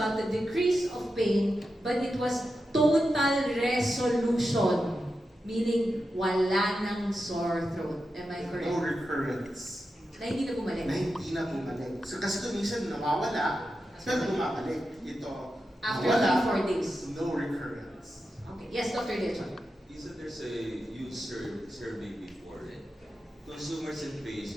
the decrease of pain, but it was total resolution. Meaning, wala nang sore throat. Am I correct? No recurrence. Na hindi na bumalik. Na hindi na bumalik. So kasi kung minsan nawawala, pero bumabalik. Ito, After nawala, 3-4 days. no recurrence. Okay. Yes, Dr. Dechon. Isn't there's a huge survey before it? Consumers and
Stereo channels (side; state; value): both; normal; correlation 0.89